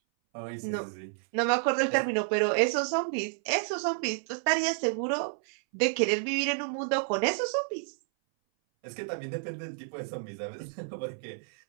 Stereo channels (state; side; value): silent; left; 58 dB below the other